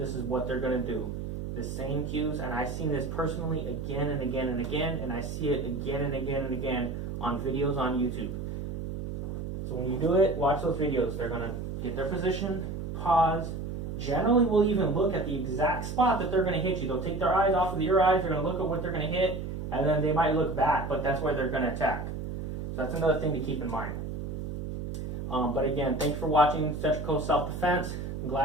is what they're going to do. The same cues, and I've seen this personally again and again and again, and I see it again and again and again on videos on YouTube. So when you do it, watch those videos. They're going to get their position, pause. Generally, we'll even look at the exact spot that they're going to hit you. They'll take their eyes off of your eyes, they're going to look at what they're going to hit, and then they might look back, but that's where they're going to attack. So that's another thing to keep in mind. But again, thanks for watching Central Coast Self-Defense. I'm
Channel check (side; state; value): right; noise; hum, 5 dB below the sound